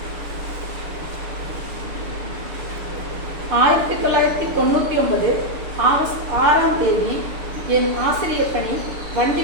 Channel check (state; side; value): late; left; 6.8 ms